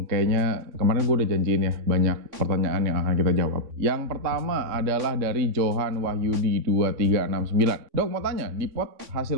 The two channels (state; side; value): late; left; 3.6 ms